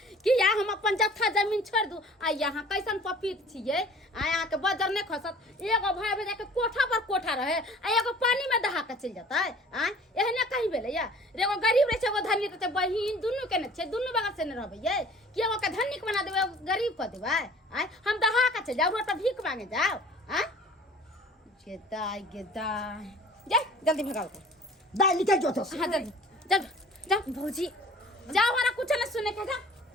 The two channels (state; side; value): normal; both; correlation 0.48